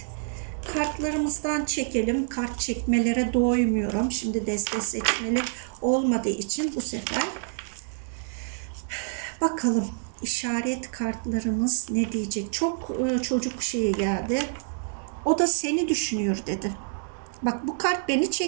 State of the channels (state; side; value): silent; left; digital silence